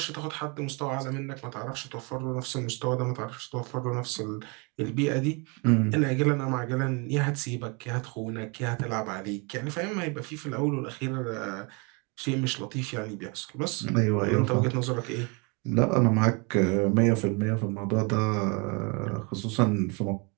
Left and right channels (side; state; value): left; quieter; 31.6 dB